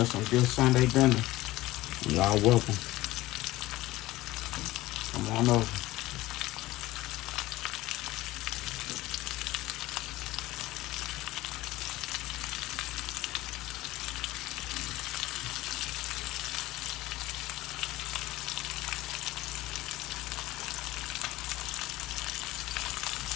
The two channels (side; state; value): right; quieter; 17.8 dB